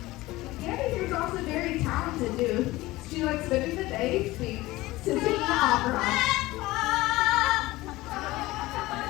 Gabby here is also very talented too. She likes spending the day singing opera.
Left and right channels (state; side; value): quieter; right; 18.9 dB